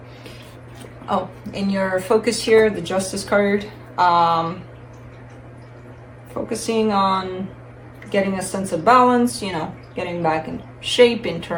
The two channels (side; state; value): both; identical; correlation 1.00